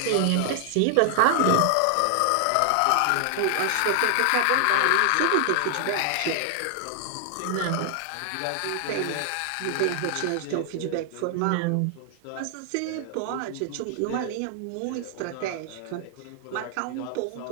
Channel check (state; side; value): different; both; correlation 0.00